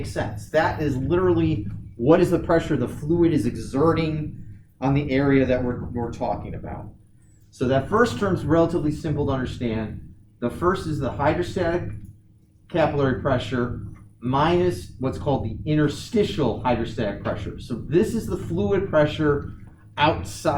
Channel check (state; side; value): identical; both; correlation 1.00